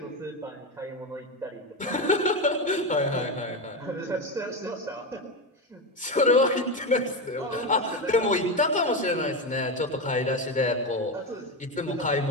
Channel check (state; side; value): normal; both; correlation 0.15